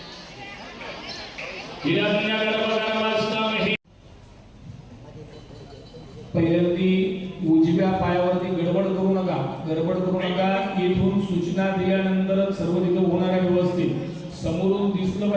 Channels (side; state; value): both; identical; correlation 1.00